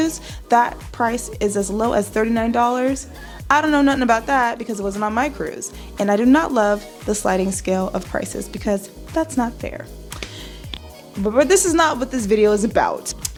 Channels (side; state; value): both; identical; correlation 1.00